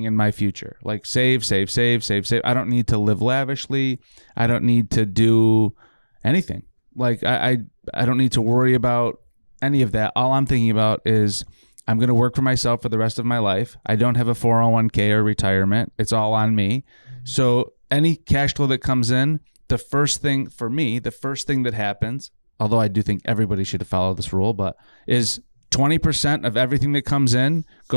in my future. Like save. I don't need to live lavishly. I don't need to do anything. Like I don't need to worry about any of that. All I'm thinking about is I'm going to work for myself for the rest of my life. I don't have a 401k or retirement. It's all on me. Mm-hmm. So any cash flow that comes in, the first thing that happens, although I do think everybody should follow this rule, but is 20% of everything that comes in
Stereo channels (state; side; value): inverted; both; correlation -1.00